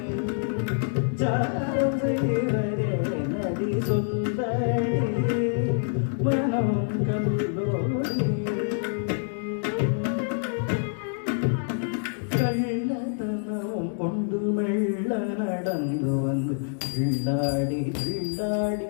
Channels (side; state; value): right; silent; digital silence